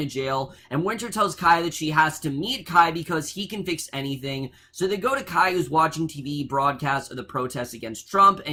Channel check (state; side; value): identical; both; correlation 1.00